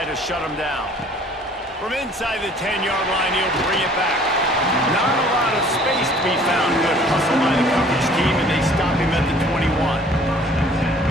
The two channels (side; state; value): both; normal; correlation 0.54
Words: to shut them down. From inside the 10-yard line, he'll bring it back. Not a lot of space to be found. Good hustle by the coverage team, and they stop him at the 21.